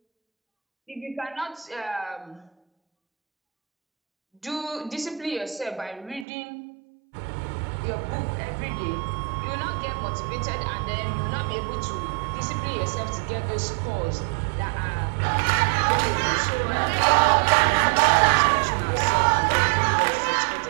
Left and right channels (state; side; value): drops out; left; at 6.2 s